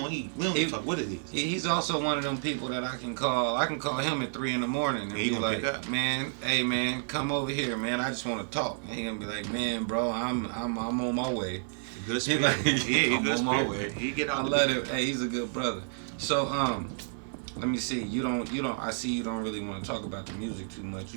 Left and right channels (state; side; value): silent; left; 55 dB below the other